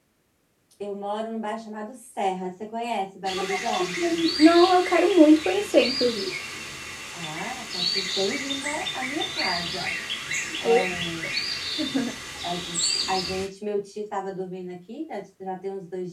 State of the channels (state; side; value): identical; both; correlation 1.00